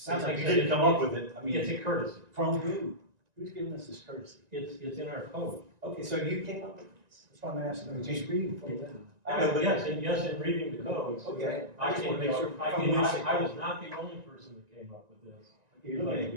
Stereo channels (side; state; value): left; late; 1.9 ms